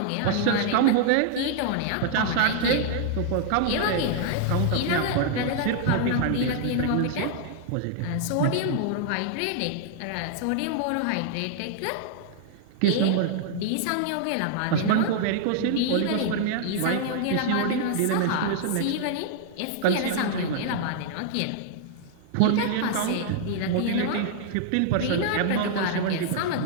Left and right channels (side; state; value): both; different; correlation -0.01